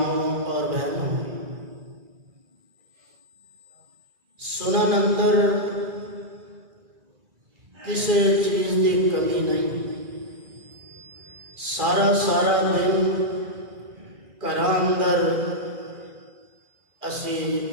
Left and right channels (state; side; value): late; left; 2.4 ms